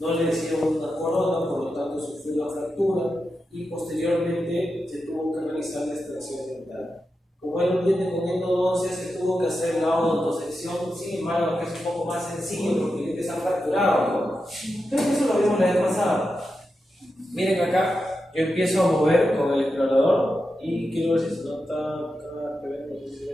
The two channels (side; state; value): both; normal; correlation 0.89